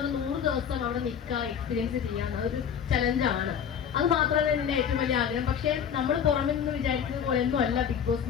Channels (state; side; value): quieter; right; 8.0 dB